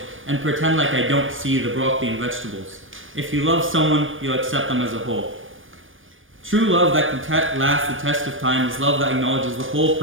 and pretend like I don't see the broccoli and vegetables. If you love someone, you'll accept them as a whole. True love that can last the test of time is love that acknowledges the whole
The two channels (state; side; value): late; left; 0.58 ms